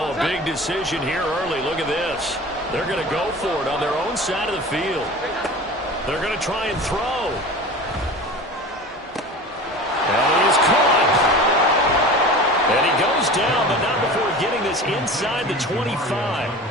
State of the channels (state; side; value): normal; both; correlation 0.35